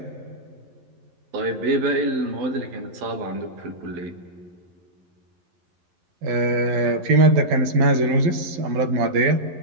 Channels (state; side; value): late; left; 11 ms